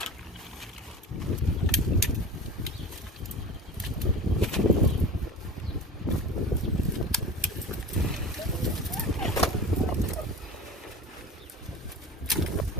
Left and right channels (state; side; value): normal; both; correlation 0.35